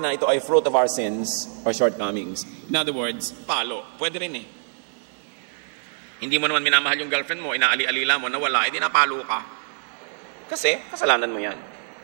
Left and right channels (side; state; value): left; silent; digital silence